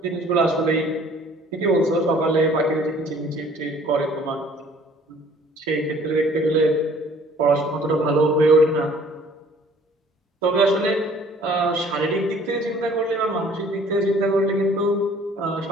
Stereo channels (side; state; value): both; normal; correlation 0.55